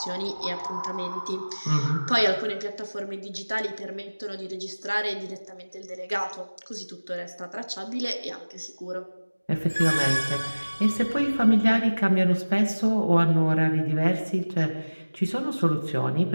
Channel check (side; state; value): both; inverted; correlation -1.00